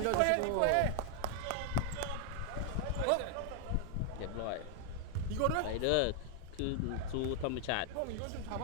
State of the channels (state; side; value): different; both; correlation 0.00